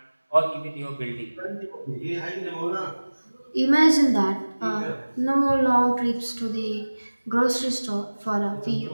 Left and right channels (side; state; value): both; inverted; correlation -1.00